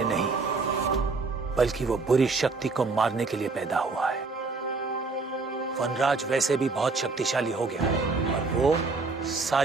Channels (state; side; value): quieter; left; 4.0 dB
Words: नहीं, बल्कि वो बुरी शक्ति को मारने के लिए पैदा हुआ है। वनराज वैसे भी बहुत शक्तिशाली हो गया है और वो